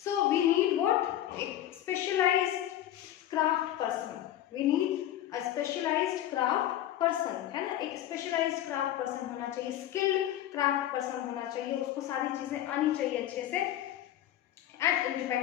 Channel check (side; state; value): right; quieter; 12.4 dB